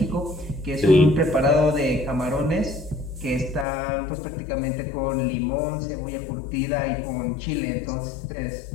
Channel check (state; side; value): drops out; right; at 3.7 s